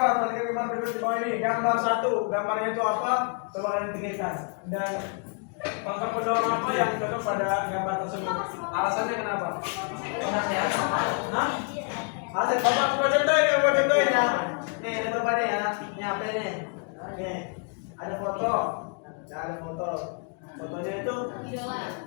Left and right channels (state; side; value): quieter; right; 39.2 dB